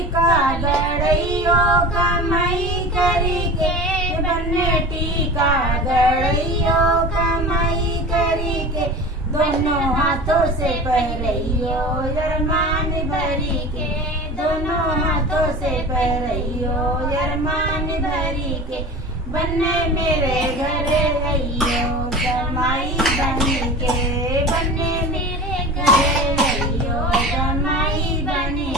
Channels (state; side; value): normal; both; correlation 0.34